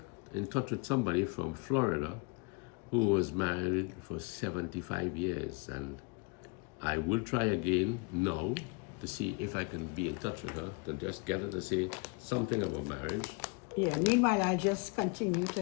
in touch with somebody from Florida who was married for 75 years, and I will try again now to see if I can be in touch with her to just get her to say something about marriage. Yeah, meanwhile I just continue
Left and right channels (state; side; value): quieter; right; 31.6 dB